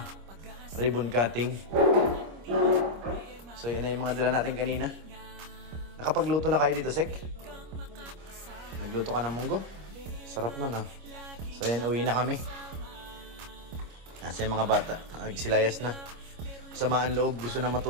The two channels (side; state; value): left; late; 25 ms